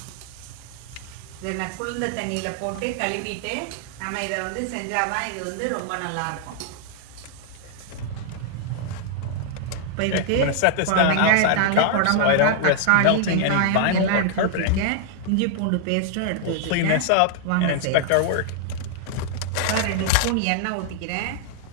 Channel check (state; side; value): different; both; correlation 0.00